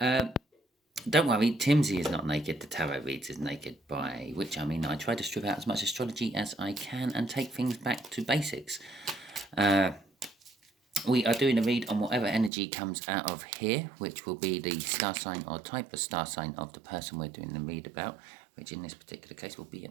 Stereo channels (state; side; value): drops out; left; at 12.5 s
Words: worry, Timsy is not naked. The tarot reads is naked, by which I mean I try to strip out as much astrology as I can and take things back to basics. We are doing a read on whatever energy comes out of here, which will be the star sign or type of star sign of the person we're doing the read about, which in this particular case will be